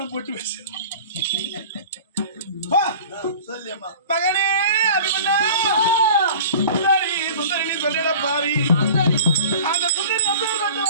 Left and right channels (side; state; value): both; inverted; correlation -0.41